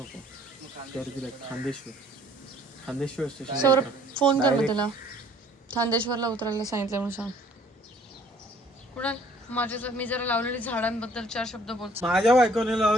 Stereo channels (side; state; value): both; normal; correlation 0.58